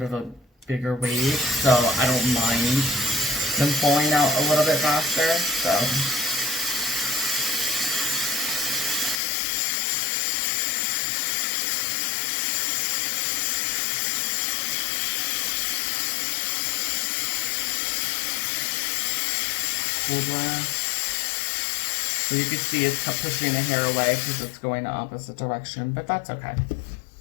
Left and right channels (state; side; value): drops out; right; at 9.2 s